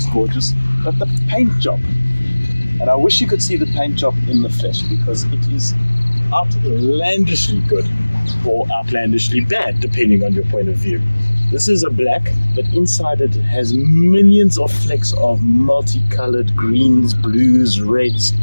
gorgeous, but the paint job, and I wish you could see the paint job in the flesh, because it is outlandishly good or outlandishly bad depending on your point of view. This is a black, but inside it has millions of flecks of multicolored greens, blues, reds.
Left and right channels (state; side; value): inverted; both; correlation -1.00